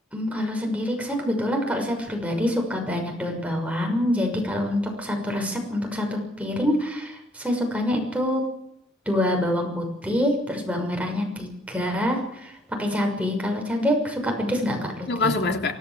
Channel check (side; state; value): both; normal; correlation 0.66